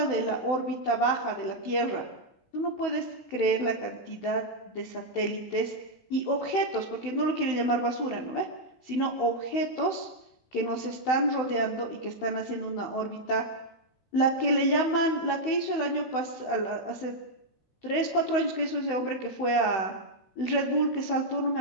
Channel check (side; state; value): right; late; 16 ms